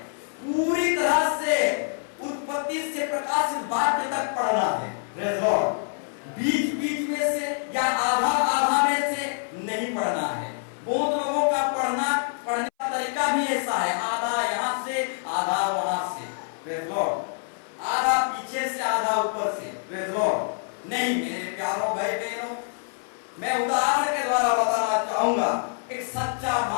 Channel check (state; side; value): silent; right; 58 dB below the other